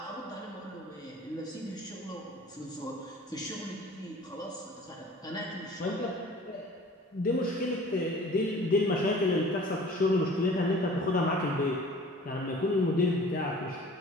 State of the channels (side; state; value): both; normal; correlation 0.46